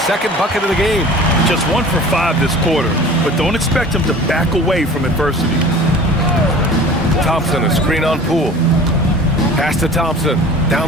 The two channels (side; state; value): both; normal; correlation 0.43